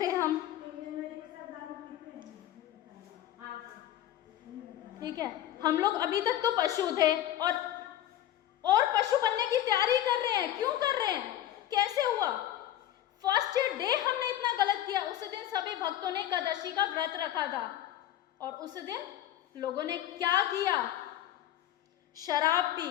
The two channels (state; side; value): quieter; right; 12.5 dB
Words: हम, ठीक है, हम लोग अभी तक तो पशु थे और पशु बनने की तैयारी कर रहे हैं। क्यों कर रहे हैं, कैसे हुआ? फर्स्ट डे हमने इतना गलत किया। उस दिन सभी भक्तों ने एकादशी का व्रत रखा था और उस दिन लोगों ने क्या किया? शराब पी,